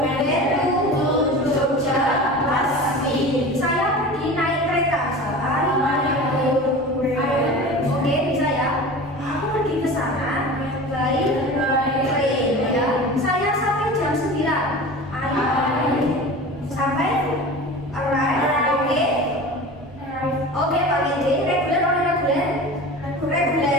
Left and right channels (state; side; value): normal; both; correlation 0.35